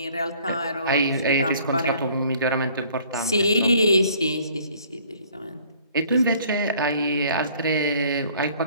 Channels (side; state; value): both; inverted; correlation -0.56